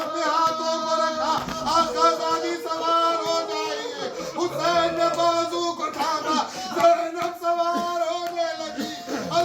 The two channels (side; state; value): both; identical; correlation 1.00